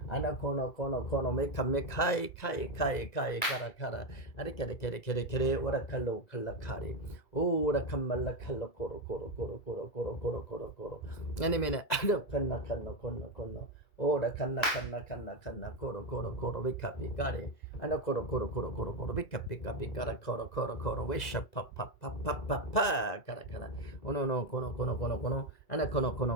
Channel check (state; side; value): late; right; 1.9 ms